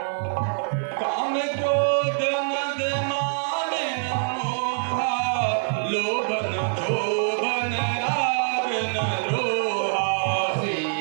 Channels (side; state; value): left; silent; digital silence